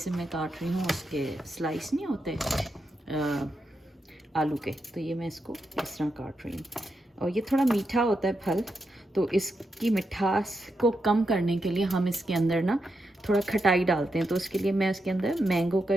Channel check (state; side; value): normal; both; correlation 0.85